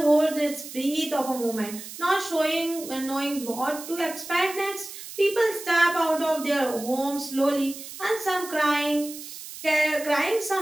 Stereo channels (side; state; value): right; noise; hiss, 12 dB below the sound